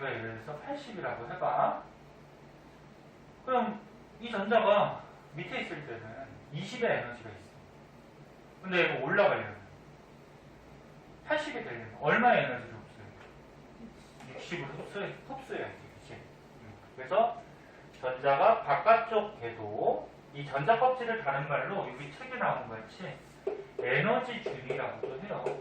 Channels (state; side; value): identical; both; correlation 1.00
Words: 예를 들어서 80이라고 해봐. 그럼 이 전자가 밑에 있을 때는 20의 에너지가 있어. 근데 이거 올라가려면 80이 되려면 얼마의 에너지를 흡수해야 돼? 60을 흡수해야지. 그치? 그래서 전자가 바깥쪽 궤도, 이 전자 껍질을 다른 말로 여기 책에 나온 것 같이 에너지 준이라고도 해요.